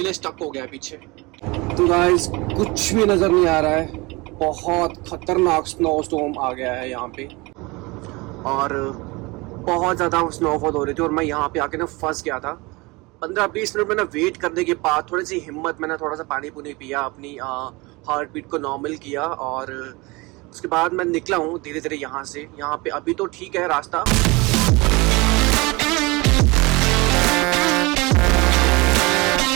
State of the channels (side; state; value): left; quieter; 24.4 dB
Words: स्टक हो गया है पीछे। तो गाइस कुछ भी नज़र नहीं आ रहा है, बहुत खतरनाक स्नो स्टॉर्म आ गया है यहाँ पे और बहुत ज़्यादा स्नोफॉल हो रही थी और मैं यहाँ पे आके ना फंस गया था। 15-20 मिनट मैंने वेट करने के बाद थोड़ी सी हिम्मत, मैंने थोड़ा सा पानी पुनी पिया, अपनी हार्ट बीट को नॉर्मल किया और उसके बाद मैं निकला हूँ धीरे धीरे यहाँ से। यहाँ पे अभी तो ठीक है रास्ता,